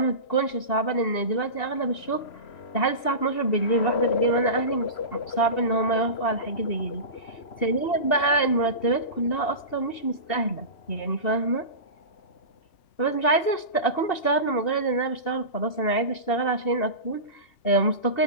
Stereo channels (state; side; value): late; right; 2.7 ms